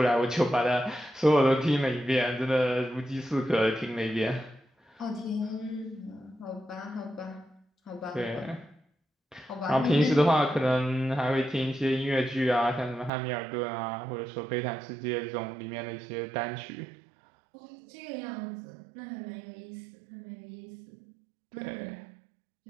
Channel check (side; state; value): left; drops out; at 13.1 s